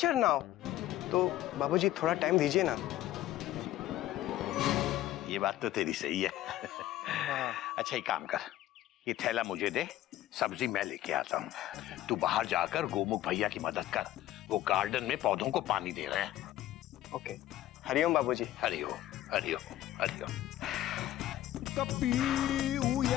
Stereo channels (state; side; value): quieter; right; 13.9 dB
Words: now. तो बाबूजी थोड़ा टाइम दीजिए ना। ये बात तो तेरी सही है। अच्छा एक काम कर, ये थैला मुझे दे, सब्जी मैं लेके आता हूँ। तू बाहर जाकर गोमुख भैया की मदद कर, वो गार्डन में पौधों को पानी दे रहे हैं। ओके, हरिओम बाबूजी। हरिओम हरिओम हरिओम। कपी